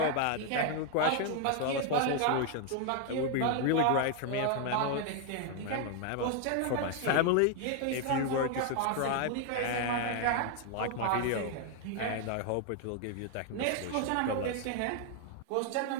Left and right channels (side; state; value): both; different; correlation 0.01